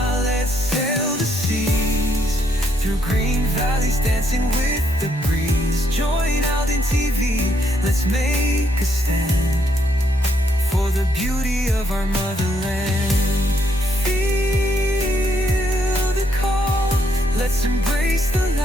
let's sail the seas, through green valleys dancing with the breeze. Join Alden TV, let's make a stand for the beauty of our motherland. Feel the call, let's embrace the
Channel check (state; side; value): normal; both; correlation 0.74